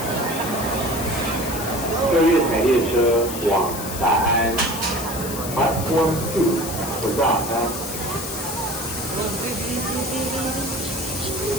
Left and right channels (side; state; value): left; noise; hiss, 8 dB below the sound